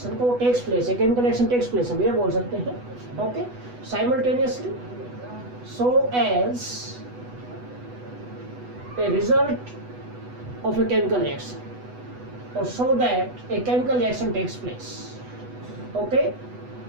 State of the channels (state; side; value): late; left; 8.1 ms